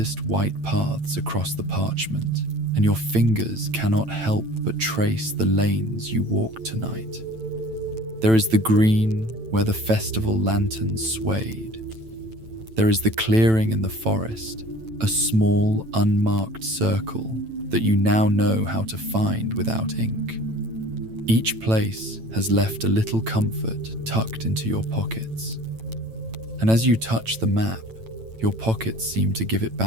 white paths across the parchment, and your fingers cannot help but trace the lanes you walked tonight. There is the green where the festival lanterns swayed. There is the clearing in the forest, a small, unmarked circle that you now know how to find without ink. Each place has left a little comfort tucked into your pockets. And as you touch the map, your pockets seem to give it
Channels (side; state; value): left; late; 9.0 ms